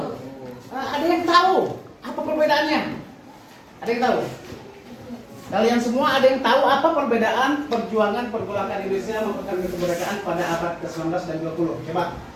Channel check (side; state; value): both; identical; correlation 1.00